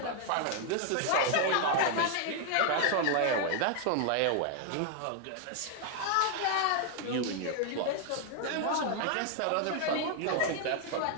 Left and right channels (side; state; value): both; different; correlation 0.00